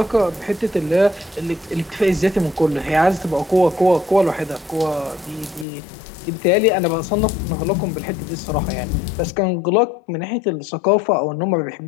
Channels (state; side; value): drops out; right; at 5.7 s